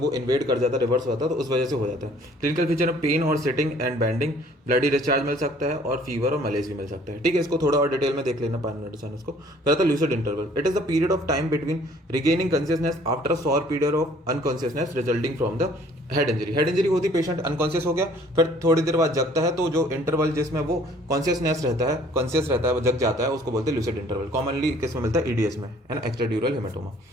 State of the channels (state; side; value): normal; both; correlation 0.56